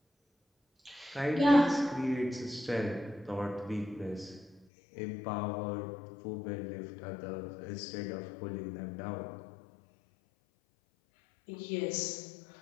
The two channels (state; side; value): drops out; right; at 4.7 s